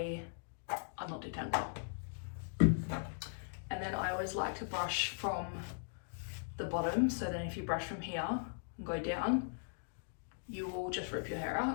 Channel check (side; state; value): right; silent; digital silence